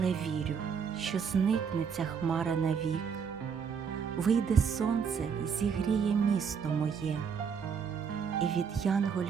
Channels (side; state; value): left; quieter; 6.6 dB